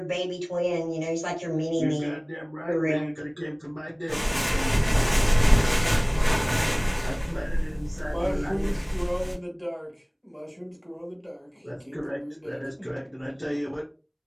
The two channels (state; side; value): identical; both; correlation 1.00